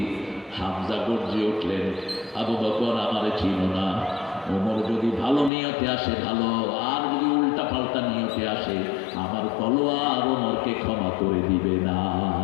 হামজা গর্জে উঠলেন, আবু বকর আমারে চিনো না, ওমর যদি ভালো নিয়তে আসে ভালো, আর যদি উল্টা পাল্টা নিয়তে আসে আমার তলোয়ার ওমরকে ক্ষমা করে দিবে না।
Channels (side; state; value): right; drops out; at 5.5 s